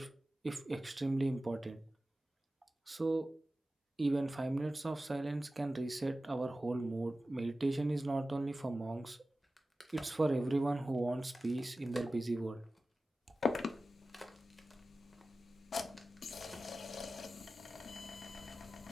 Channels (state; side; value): normal; both; correlation 0.95